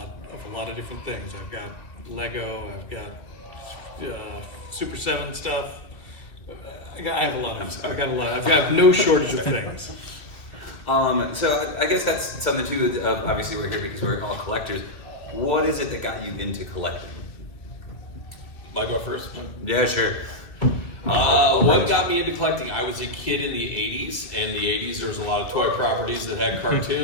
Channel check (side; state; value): right; late; 2.0 ms